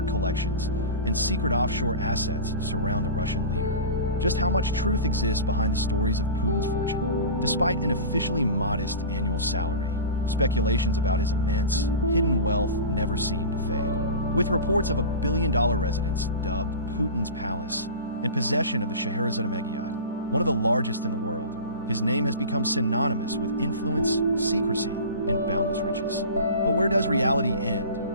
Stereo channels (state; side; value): inverted; both; correlation -0.32